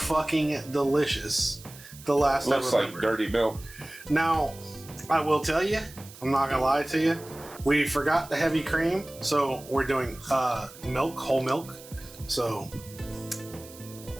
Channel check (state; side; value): noise; right; hiss, 19 dB below the sound